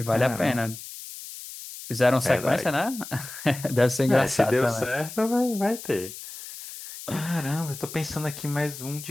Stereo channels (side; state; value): left; noise; hiss, 12 dB below the sound